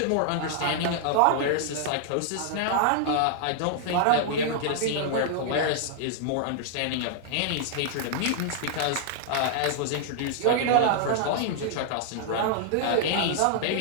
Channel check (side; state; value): both; different; correlation -0.01